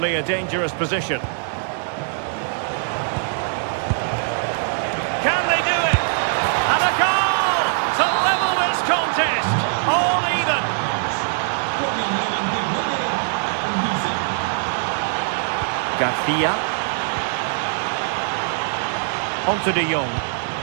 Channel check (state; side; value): silent; left; digital silence